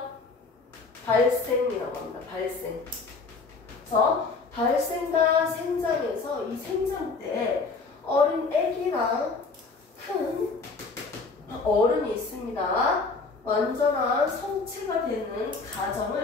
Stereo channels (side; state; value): right; quieter; 4.2 dB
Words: 발생이라고 합니다. 발생. 그래서 발생과 생장에서 이 생장 때 어린 애기랑 큰 어른이 있습니다. 완전한 성체가 되는